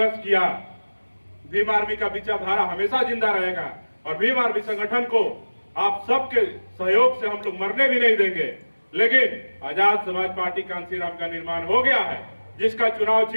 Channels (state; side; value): inverted; both; correlation -1.00